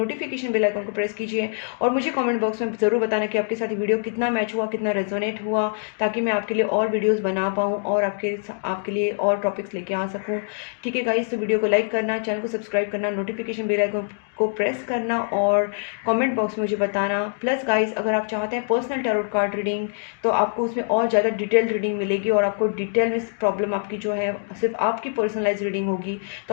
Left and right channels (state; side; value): silent; right; digital silence